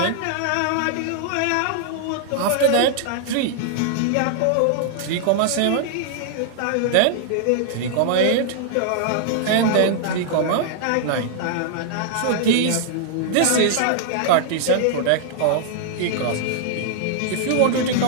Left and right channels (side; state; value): both; different; correlation -0.01